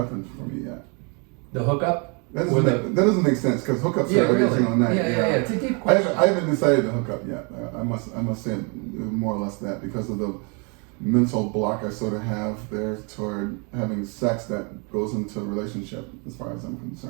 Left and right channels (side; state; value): left; quieter; 34.2 dB